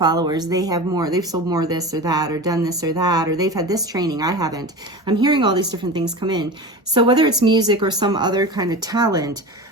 they've sold more this or that, or done this or that, or they've had this training, I haven't. I'm hearing all these different things come in. So whether it's music or some other kind of talent,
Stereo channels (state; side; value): normal; both; correlation 0.30